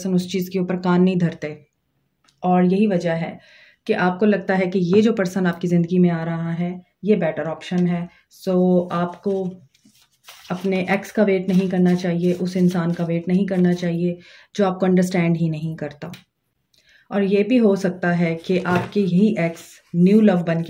उस चीज़ के ऊपर कान नहीं धरते। और यही वजह है कि आपको लगता है कि ये जो पर्सन आपकी ज़िंदगी में आ रहा है ये बेटर ऑप्शन है। सो आपको अपने एक्स का वेट नहीं करना चाहिए, उस इंसान का वेट नहीं करना चाहिए जो आपको अंडरस्टैंड ही नहीं करता। और ये भी हो सकता है कि आपके ही एक्स न्यू लव बन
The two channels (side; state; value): both; identical; correlation 1.00